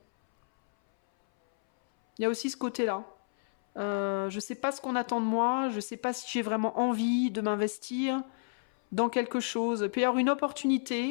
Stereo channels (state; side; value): silent; right; 58 dB below the other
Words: Il y a aussi ce côté-là. Je sais pas ce qu'on attend de moi, je sais pas si j'ai vraiment envie de m'investir dans quelque chose. Il peut y avoir une